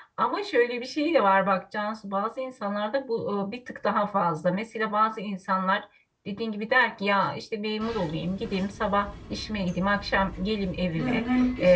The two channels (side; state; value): both; identical; correlation 1.00